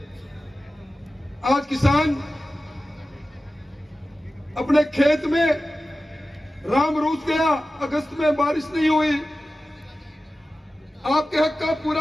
आज किसान अपने खेत में राम रूस गया, अगस्त में बारिश नहीं हुई, आपके हक का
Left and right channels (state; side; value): normal; both; correlation 0.95